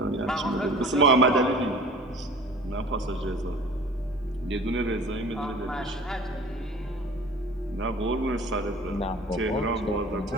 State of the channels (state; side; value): normal; both; correlation 0.44